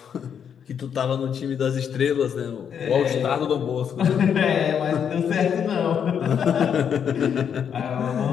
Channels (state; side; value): quieter; right; 7.9 dB